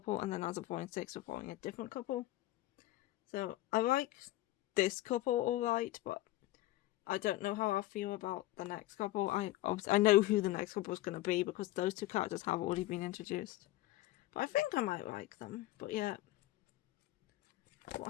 and then as of volume 6 we're following a different couple. So I like this couple alright, but I don't know how I feel about the next couple. I know who the next couple is going to be because those two characters have already been introduced. But I think I might like them. But yeah.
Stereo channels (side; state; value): right; quieter; 16.7 dB